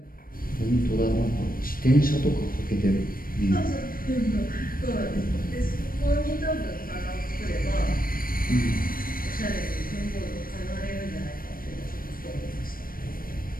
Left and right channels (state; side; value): late; right; 0.41 ms